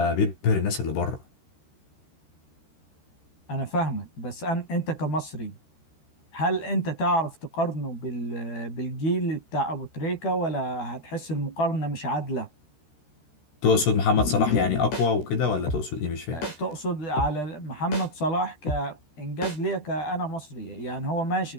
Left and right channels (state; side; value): late; right; 13 ms